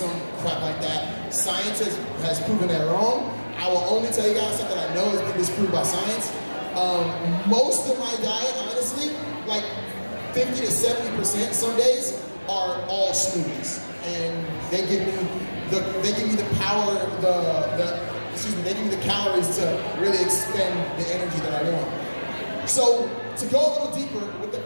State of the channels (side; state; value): both; inverted; correlation -1.00